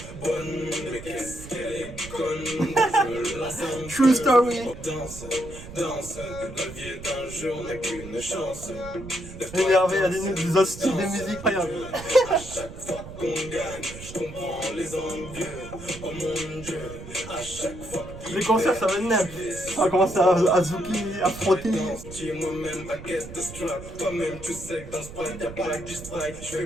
bonne, mais qu'est-ce qu'elle est conne, je me lasse un True story. Danse, la vie est un jeu, on n'a qu'une chance. Énervé, il y a des autres styles de musique, incroyable. À chaque fois qu'on gagne, je comprends les envieux, oh mon Dieu, à chaque fois. Les concerts, ça va être neuf. On va commencer à zouker, à frotter. Moi-même, baguette de strap. Toi-même, tu sais que dans ce prime, y'a pas que du strike. Je fais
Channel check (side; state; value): right; noise; rumble, 13 dB below the sound